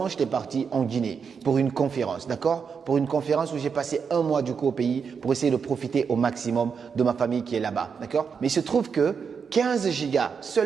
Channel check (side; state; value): left; quieter; 6.2 dB